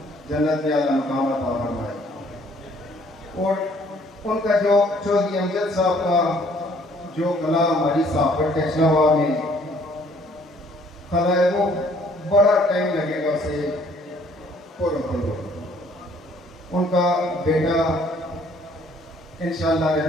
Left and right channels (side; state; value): both; normal; correlation 0.61